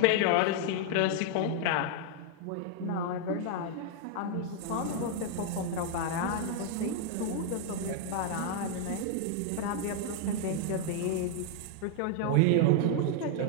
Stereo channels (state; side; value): different; both; correlation 0.00